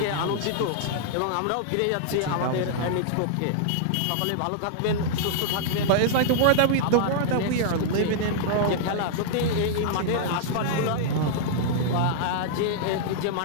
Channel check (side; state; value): both; different; correlation -0.02